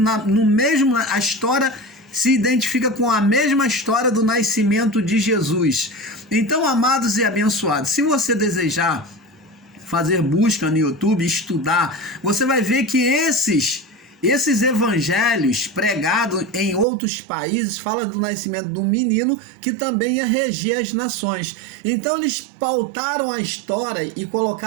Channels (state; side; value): drops out; left; at 16.9 s